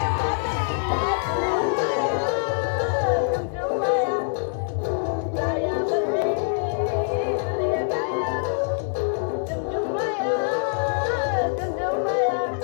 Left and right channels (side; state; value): right; silent; digital silence